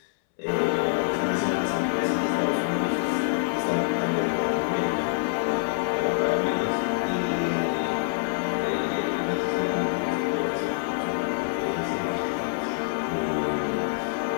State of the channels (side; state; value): right; silent; 61 dB below the other